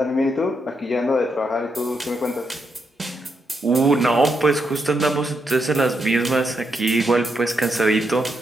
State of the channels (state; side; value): normal; both; correlation 0.81